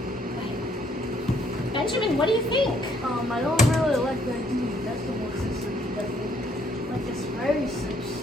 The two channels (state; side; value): normal; both; correlation 0.67